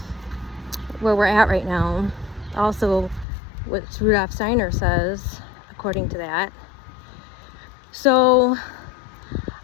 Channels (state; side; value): drops out; right; at 3.2 s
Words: where we're at right now. Also, what Rudolf Steiner says, according to that. So,